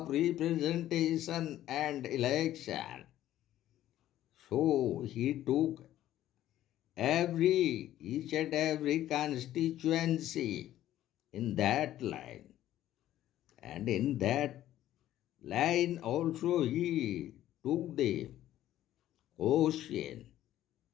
representation and election. So he took each and every constituency in that line. And in that line also he took the question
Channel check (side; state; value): right; quieter; 13.1 dB